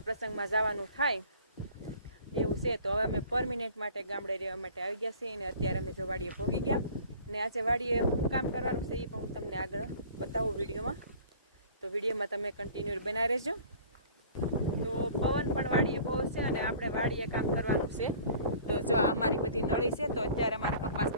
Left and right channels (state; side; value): inverted; both; correlation -0.48